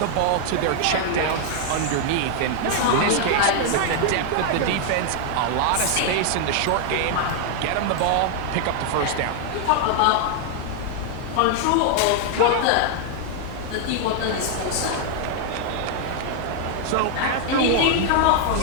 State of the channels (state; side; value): different; both; correlation 0.00